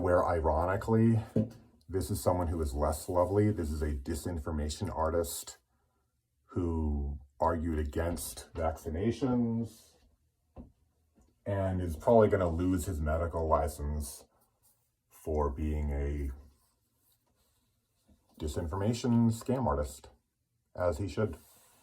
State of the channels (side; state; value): both; identical; correlation 1.00